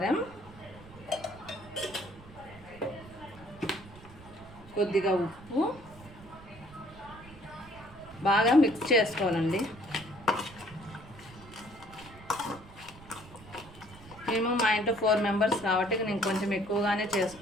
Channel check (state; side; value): noise; right; rumble, 19 dB below the sound